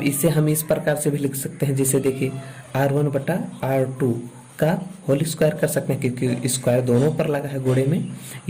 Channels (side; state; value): both; identical; correlation 1.00